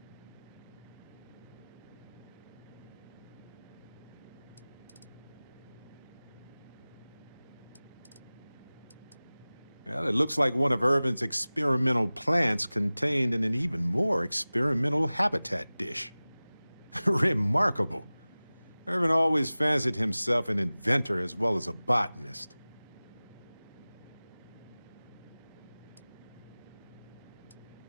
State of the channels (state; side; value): inverted; both; correlation -0.98